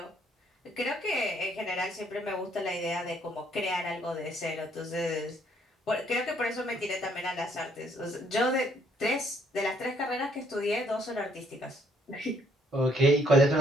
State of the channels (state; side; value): normal; both; correlation 0.67